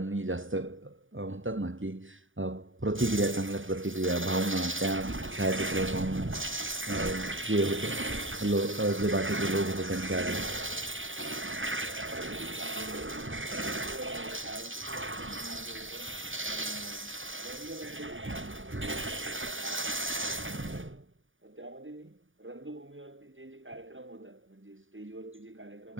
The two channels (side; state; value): left; late; 0.57 ms